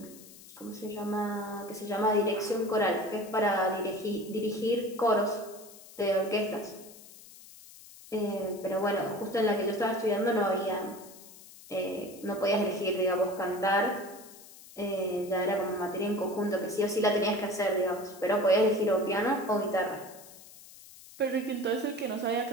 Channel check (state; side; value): noise; left; hiss, 19 dB below the sound